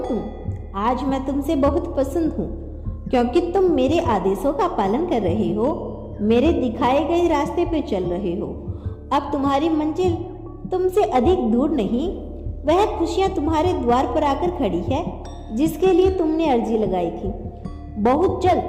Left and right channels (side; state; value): both; identical; correlation 1.00